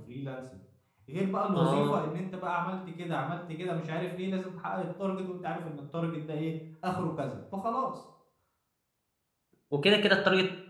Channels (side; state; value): both; identical; correlation 1.00